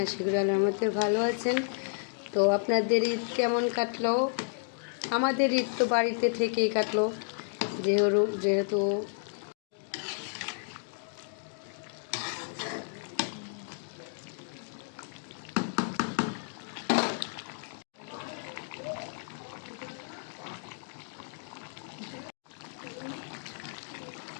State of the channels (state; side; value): silent; right; digital silence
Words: আশা করি আল্লাহর রহমতে ভালো আছেন। তো আপনাদের ঈদ কেমন কাটলো? আমাদের ঈদ তো বাড়িতে থেকেই কাটলো, যেহেতু